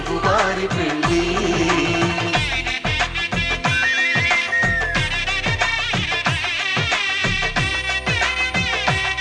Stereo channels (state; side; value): identical; both; correlation 1.00